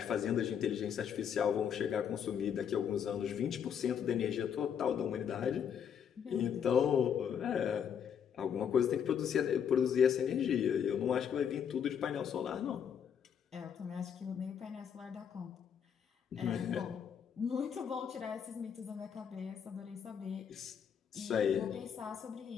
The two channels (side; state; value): right; quieter; 8.0 dB